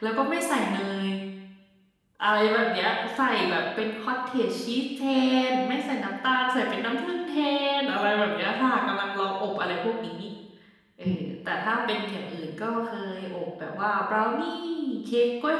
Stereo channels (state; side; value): identical; both; correlation 1.00